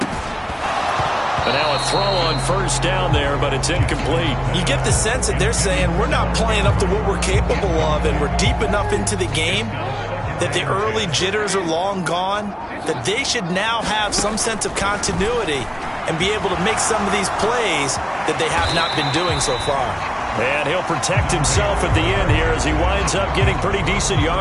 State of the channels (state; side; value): identical; both; correlation 1.00